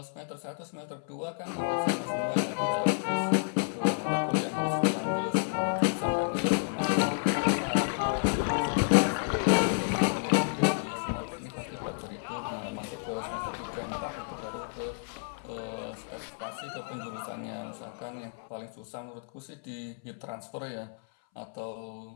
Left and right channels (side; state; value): right; silent; 57 dB below the other